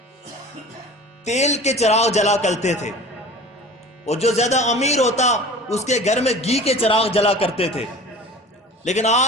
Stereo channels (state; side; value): normal; both; correlation 0.41